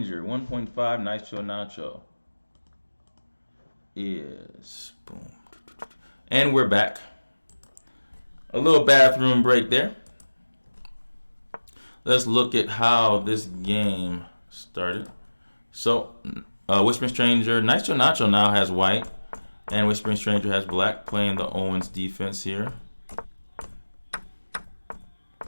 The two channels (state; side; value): inverted; both; correlation -1.00